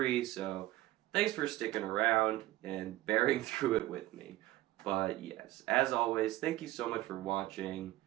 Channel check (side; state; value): left; quieter; 16.4 dB